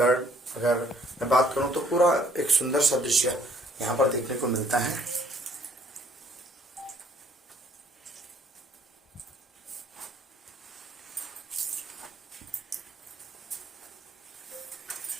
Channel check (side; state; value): both; normal; correlation 0.62